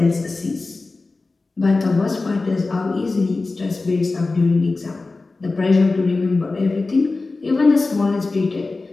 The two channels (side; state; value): right; quieter; 3.6 dB